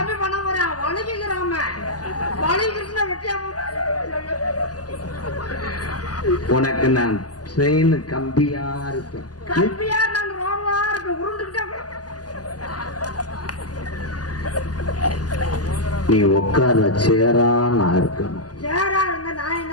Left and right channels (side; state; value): right; late; 0.68 ms